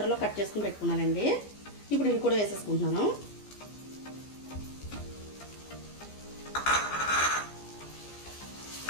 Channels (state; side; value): late; right; 15 ms